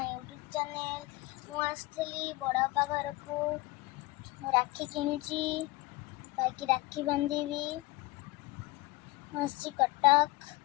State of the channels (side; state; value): right; quieter; 21.1 dB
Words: YouTube channel. मु आसली बड़ापा घर को राखी किणुची बाकी राखी बांधीबी। मसी कटक